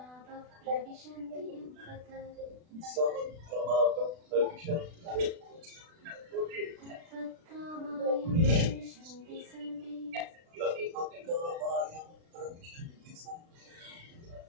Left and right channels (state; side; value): late; left; 36 ms